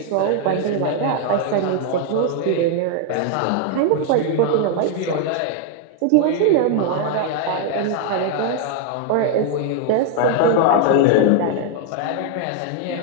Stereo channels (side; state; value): both; different; correlation 0.00